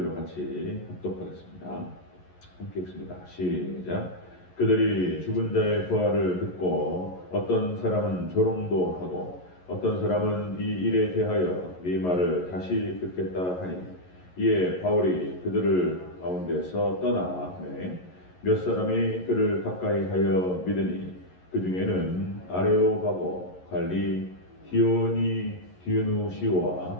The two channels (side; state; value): right; late; 11 ms